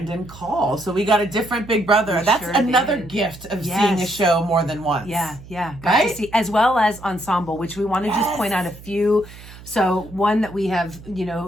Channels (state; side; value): noise; right; hum, 18 dB below the sound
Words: Call. So we got a different Big Brother. That's sure another did. gift of Yes. seeing a show more than once. Yeah, got Right? to see, as well as ensemble, which we want to just point out a few. So one that we have,